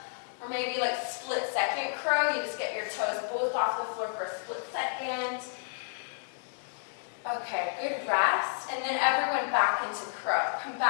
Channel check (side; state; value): right; silent; digital silence